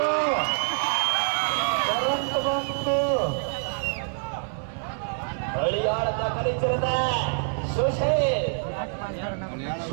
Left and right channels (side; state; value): left; silent; digital silence